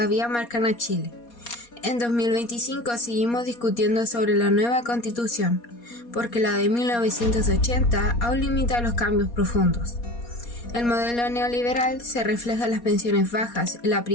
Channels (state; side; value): late; right; 4.2 ms